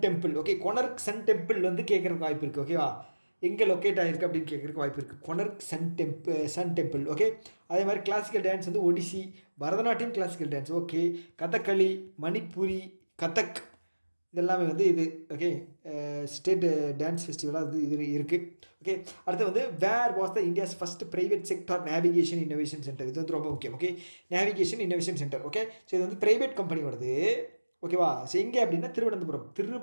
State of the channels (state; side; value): inverted; both; correlation -1.00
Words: temple. Okay, Konark sun temple வந்து கேட்குறதுக்கு வாய்ப்பு இருக்குது. ஓகேவா, எங்கே லொக்கேட் ஆகிருக்கு அப்படின்னு கேட்குறதுக்கு வாய்ப்பு இருக்குது. கொனர்க் சன் டெம்பிள். ஓகே, அதே மாதிரி கிளாசிக்கல் டான்ஸ் வந்து Odissi, Bharatanatyam classical dance. Okay, Kathakali, Manipuri, Kathak, இதெல்லாமே வந்து இது. ஓகே, ஸ்டேட் டான்ஸ் ஃபெஸ்டிவலாக இது இருக்குது. ஓகே, அடுத்து வந்து where was the India's first private sector navigation innovation centre. இது வந்து ரொம்ப முக்கியம். Okay, navigation innovation centre. Okay, so இது வந்து ப்ரைவேட் கம்பெனி வருது. ஓகேவா, ஸோ எங்கே அப்படின்னா